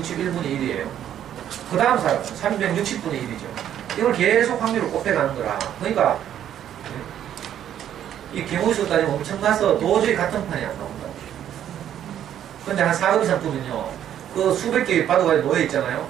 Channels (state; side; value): quieter; left; 10.5 dB